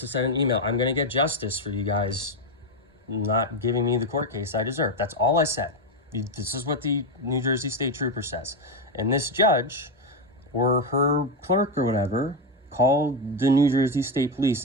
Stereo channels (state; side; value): normal; both; correlation 0.10